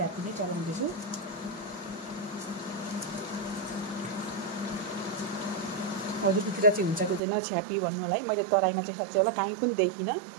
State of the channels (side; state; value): left; drops out; at 7.2 s